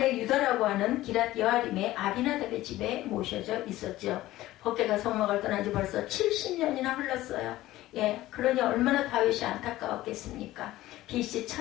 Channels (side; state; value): right; quieter; 16.1 dB